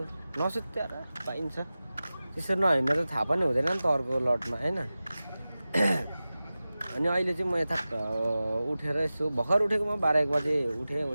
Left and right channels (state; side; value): inverted; both; correlation -0.96